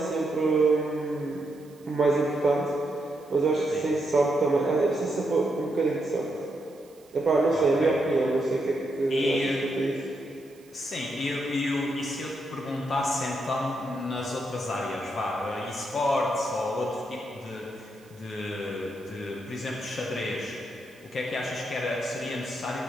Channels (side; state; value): right; noise; hiss, 29 dB below the sound